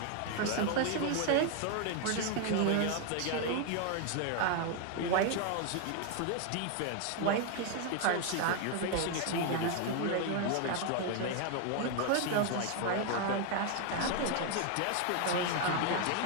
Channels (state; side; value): different; both; correlation 0.00